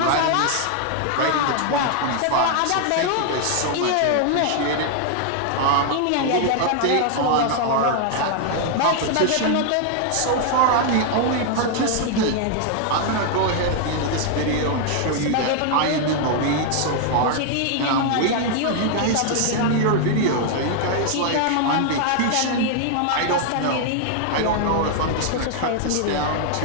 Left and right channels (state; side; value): different; both; correlation 0.00